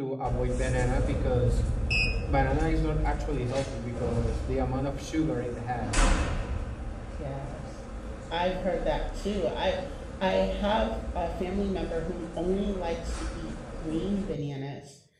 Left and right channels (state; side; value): identical; both; correlation 1.00